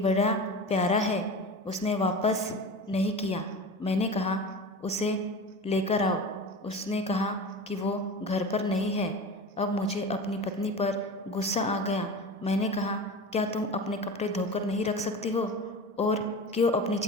प्यारा है, उसने वापस नहीं किया। मैंने कहा, उसे लेकर आओ। उसने कहा कि वो घर पर नहीं है। अब मुझे अपनी पत्नी पर गुस्सा आ गया। मैंने कहा, क्या तुम अपने कपड़े धोकर नहीं रख सकती हो, और क्यों अपनी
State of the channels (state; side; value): normal; both; correlation 0.31